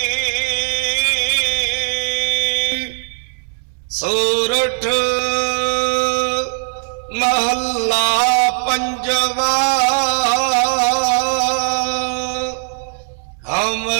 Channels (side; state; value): left; silent; 67 dB below the other